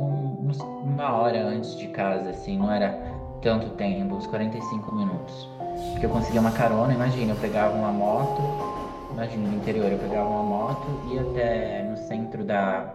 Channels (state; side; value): identical; both; correlation 1.00